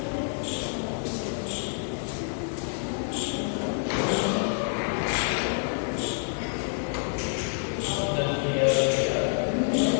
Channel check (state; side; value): silent; right; digital silence